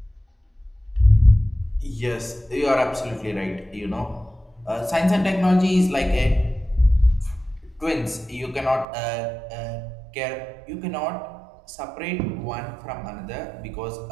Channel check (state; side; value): drops out; left; at 8.8 s